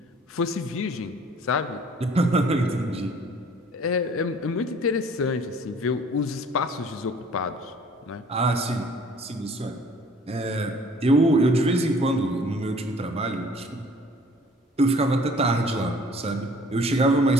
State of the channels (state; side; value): normal; both; correlation 0.54